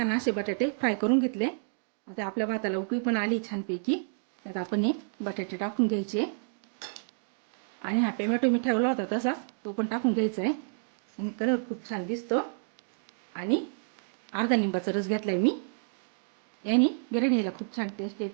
असे बटाटे फ्राय करून घेतले. आता आपल्या भाताला उकळी पण आली छानपैकी. त्यात आपण हे बटाटे टाकून घ्यायचे आणि हा टोमॅटो मी ठेवला होता तसाच तो पण टाकून घ्यायचा आहे. आणि कलर खूप छान दिसतो. आणि अर्धा लिंबाचा रस घेतलाय मी. याने बिर्याणीला खूप छान टेस्ट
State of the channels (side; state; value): left; silent; digital silence